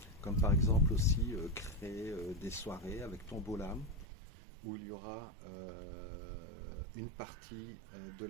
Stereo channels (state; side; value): drops out; left; at 4.0 s